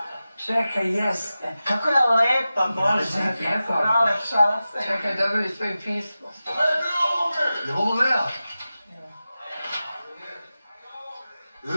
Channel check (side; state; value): both; inverted; correlation -0.94